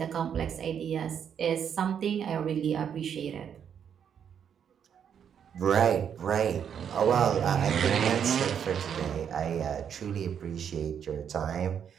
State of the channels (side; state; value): left; quieter; 8.1 dB